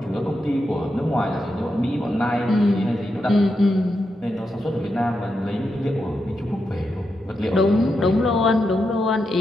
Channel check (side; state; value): both; normal; correlation 0.86